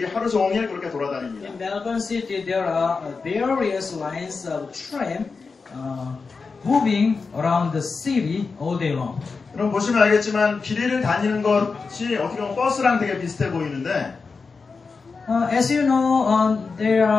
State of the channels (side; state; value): right; quieter; 4.6 dB